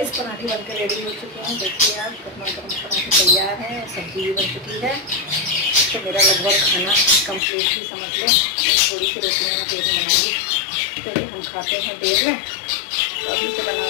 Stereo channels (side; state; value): right; drops out; at 7.4 s